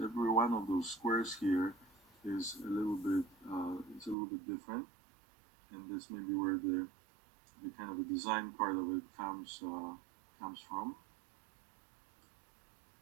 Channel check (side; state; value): left; drops out; at 4.2 s